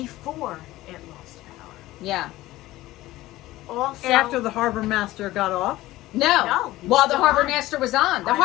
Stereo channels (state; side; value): quieter; right; 17.0 dB